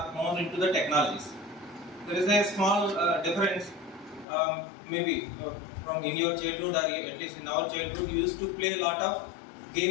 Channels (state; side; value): drops out; right; at 4.2 s